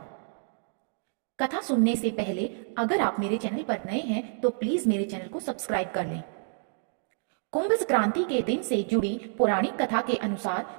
कथा सुनने से पहले अगर आप मेरे चैनल पर नए हैं तो प्लीज मेरे चैनल को सब्सक्राइब कर लें। कुंभ संक्रांति के दिन से जुड़ी पौराणिक कथा के अनुसार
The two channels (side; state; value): left; silent; digital silence